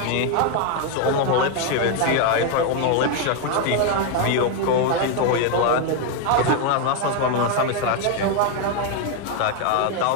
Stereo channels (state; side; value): different; both; correlation 0.01